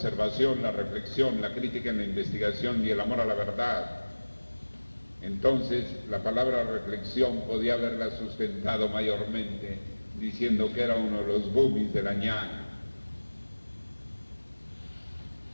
la reflexión, la crítica en la investigación y el amor a la verdad, entonces la palabra reflexión podía haberla sustentado mayormente diciendo que era uno de los boomies de la ñana.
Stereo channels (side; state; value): both; inverted; correlation -1.00